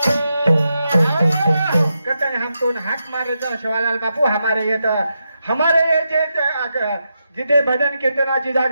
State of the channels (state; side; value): inverted; both; correlation -0.86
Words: हम तो हाक मारे शिवालाल बापू हमारे ये जे जिथे भजन कीर्तनाची